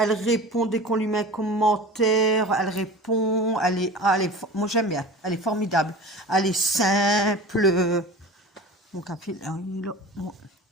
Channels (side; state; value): both; normal; correlation 0.36